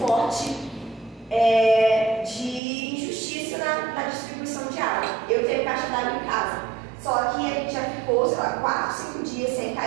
forte de injustiça na distribuição de água. Eu tenho caixa d'água em casa, só que a gente já ficou, 4, 5 dias sem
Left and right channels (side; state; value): left; drops out; at 2.6 s